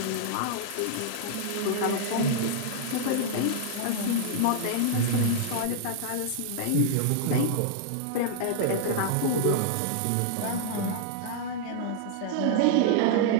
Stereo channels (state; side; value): different; both; correlation -0.01